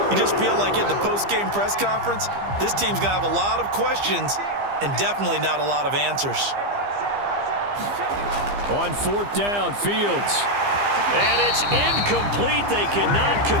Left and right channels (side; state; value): left; late; 15 ms